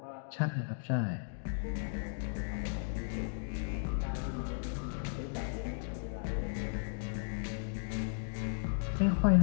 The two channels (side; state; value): right; silent; digital silence